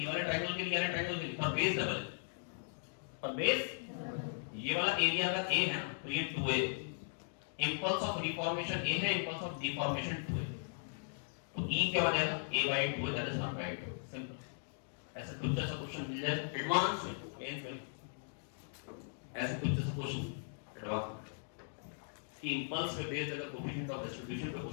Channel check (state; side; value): silent; right; digital silence